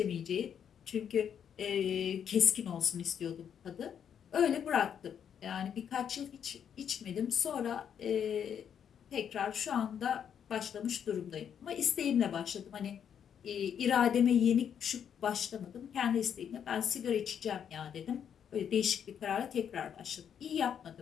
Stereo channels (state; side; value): quieter; right; 8.4 dB